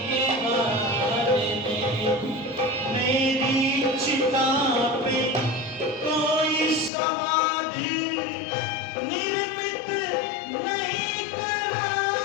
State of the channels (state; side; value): drops out; right; at 6.9 s